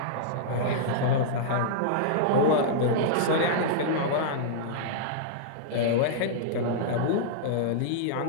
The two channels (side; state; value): both; different; correlation -0.02